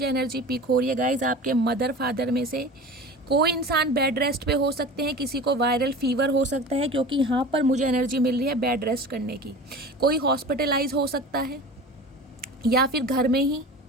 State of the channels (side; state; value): both; normal; correlation 0.35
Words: एनर्जी पिक हो रही है गाइज, आपके मदर फादर में से कोई इंसान बेड रेस्ट पे हो सकते हैं, किसी को वायरल फीवर हो सकता है, क्योंकि यहाँ पर मुझे एनर्जी मिल रही है बेड रेस्ट करने की। कोई हॉस्पिटलाइज हो सकता है, या फिर घर में ही